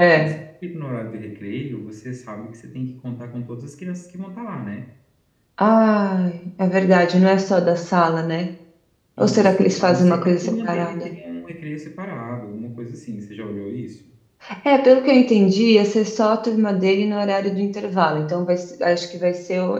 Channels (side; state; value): both; identical; correlation 1.00